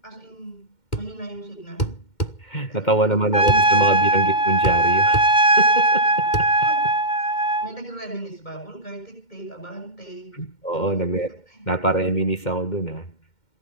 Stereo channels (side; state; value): right; late; 2.1 ms